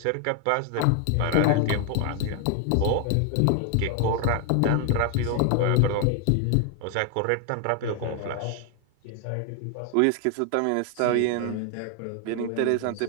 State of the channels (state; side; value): different; both; correlation 0.01